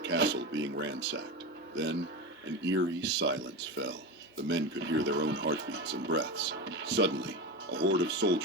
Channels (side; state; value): both; normal; correlation 0.22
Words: castle being ransacked. Then, an eerie silence fell. The men could hear their own heartbeats and breaths. Suddenly, a horde of